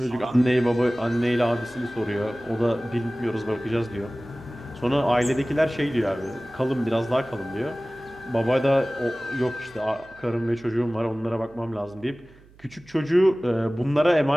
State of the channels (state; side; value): noise; right; hum, 26 dB below the sound